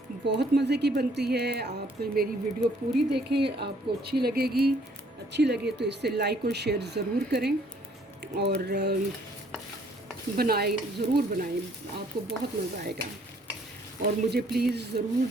बहुत मज़े की बनती है। आप मेरी वीडियो पूरी देखें, आपको अच्छी लगेगी। अच्छी लगे तो इससे लाइक और शेयर ज़रूर करें और ज़रूर बनाएं, आपको बहुत मज़ा आएगा। और मुझे प्लीज़ ज़रूर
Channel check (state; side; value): normal; both; correlation 0.63